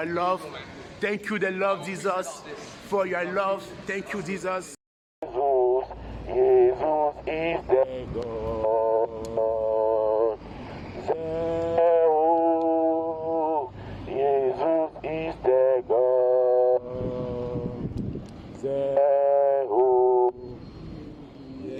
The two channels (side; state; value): both; identical; correlation 1.00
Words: love. Thank you, the Lord Jesus, for your love. Thank you, Jesus. Jesus is the God. Jesus is the God.